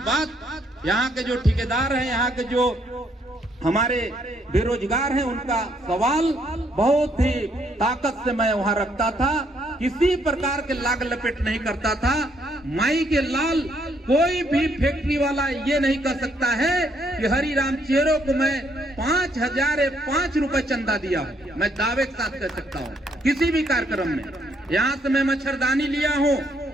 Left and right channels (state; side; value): normal; both; correlation 0.70